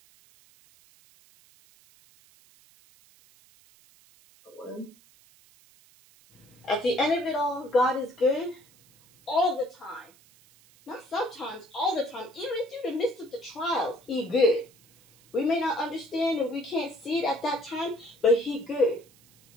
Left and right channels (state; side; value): noise; right; hiss, 28 dB below the sound